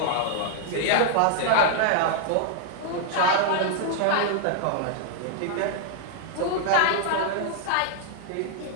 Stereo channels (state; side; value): different; both; correlation -0.01